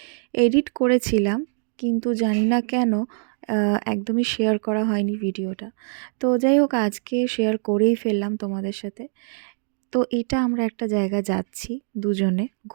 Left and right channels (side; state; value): left; silent; digital silence